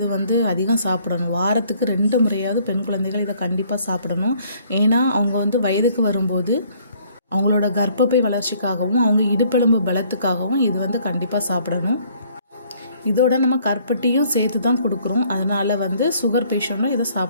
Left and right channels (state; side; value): inverted; both; correlation -0.61